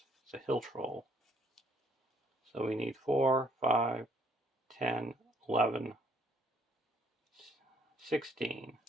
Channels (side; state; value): both; normal; correlation 0.65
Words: It's a Hill Troll. So we need 4, 5, 10, 11, 16.